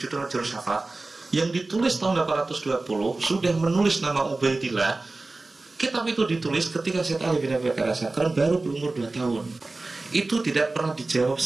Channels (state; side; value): quieter; left; 3.3 dB